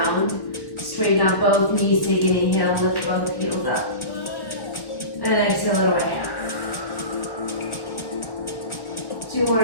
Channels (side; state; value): right; late; 1.3 ms